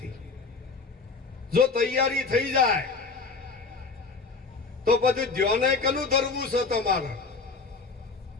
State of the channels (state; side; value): quieter; right; 4.4 dB